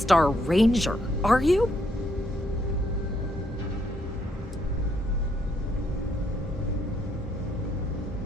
Ranger, are you?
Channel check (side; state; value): both; normal; correlation 0.73